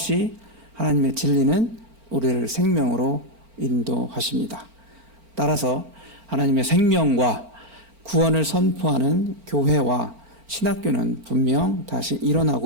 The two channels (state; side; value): late; left; 4.4 ms